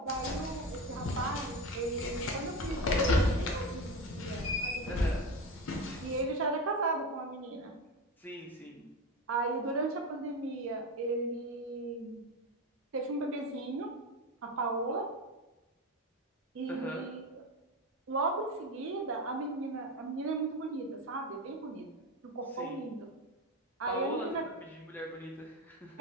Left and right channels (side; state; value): both; normal; correlation 0.21